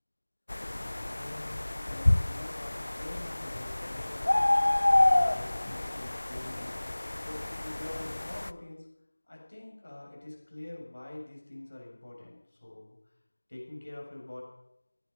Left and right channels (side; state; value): both; inverted; correlation -1.00